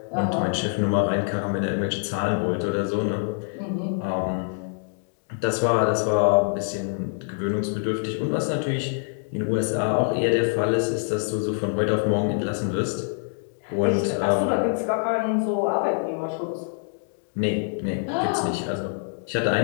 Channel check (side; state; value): right; silent; digital silence